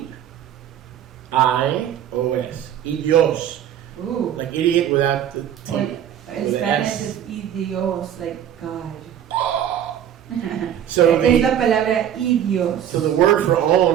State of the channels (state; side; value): quieter; left; 10.2 dB